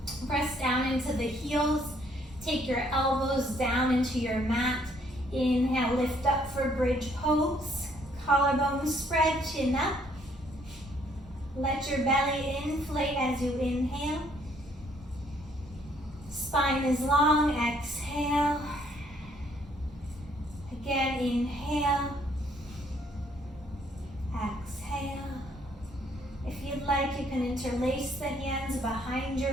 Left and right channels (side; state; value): both; normal; correlation 0.66